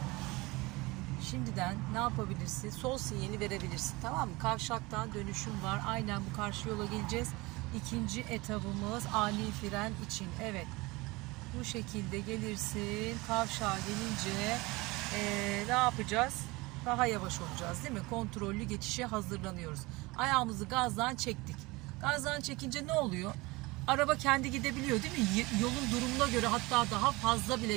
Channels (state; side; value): quieter; left; 22.8 dB